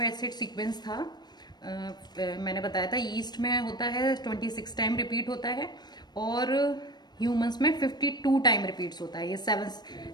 acid sequence था, मैंने बताया था ईस्ट में होता है 26 टाइम रिपीट होता है और ह्यूमंस में 52 टाइम रिपीट्स होता है। ये 7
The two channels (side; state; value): right; late; 0.20 ms